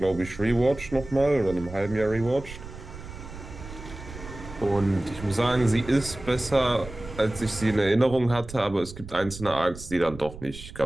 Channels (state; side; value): noise; right; rumble, 13 dB below the sound